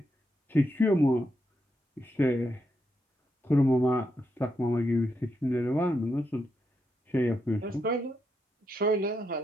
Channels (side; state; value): both; normal; correlation 0.82